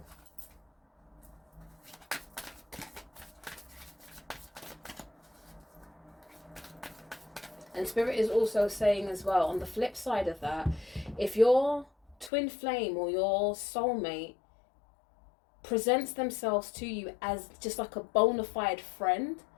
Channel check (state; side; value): drops out; right; at 12.3 s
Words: And Spirit is also saying as well, on the flip side of that, if your twin flame or your soulmate presents themselves to you as just like a bona fide friend,